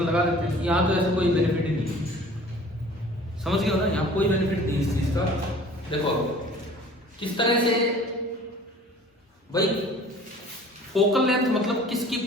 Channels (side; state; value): both; normal; correlation 0.48